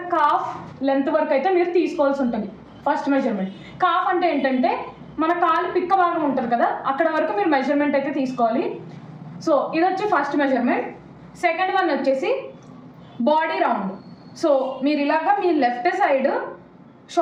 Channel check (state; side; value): identical; both; correlation 1.00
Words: కాఫ్ లెంత్ వరకు అయితే మీరు తీసుకోవాల్సి ఉంటుంది. ఫస్ట్ మెజర్మెంట్ కాఫ్ అంటే ఏంటంటే మన కాలు పిక్క భాగం ఉంటుంది కదా, అక్కడ వరకు మీరు మెజర్మెంట్ అయితే తీసుకోవాలి. సో ఇది వచ్చి ఫస్ట్ మెజర్మెంట్. సెకండ్ వన్ వచ్చేసి బాడీ రౌండ్. సో మీరు ఇలాగా మీ లెఫ్ట్ సైడ్